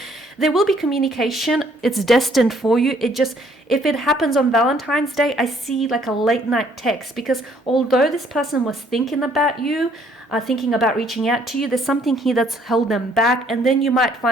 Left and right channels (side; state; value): both; normal; correlation 0.64